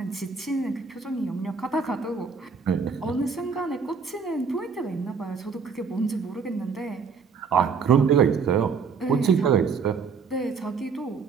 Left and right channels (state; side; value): quieter; left; 5.5 dB